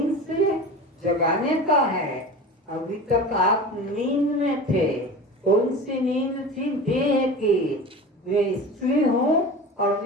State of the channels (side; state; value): both; normal; correlation 0.33